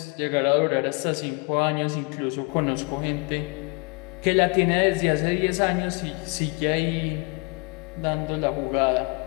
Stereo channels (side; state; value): right; quieter; 30.4 dB